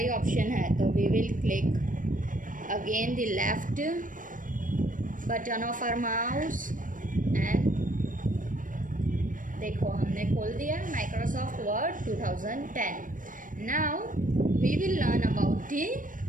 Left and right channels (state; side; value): late; left; 0.38 ms